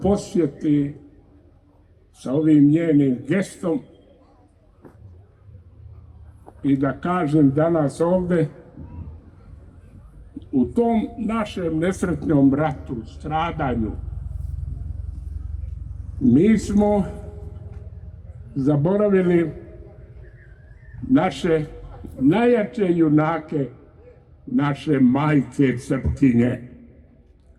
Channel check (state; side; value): identical; both; correlation 1.00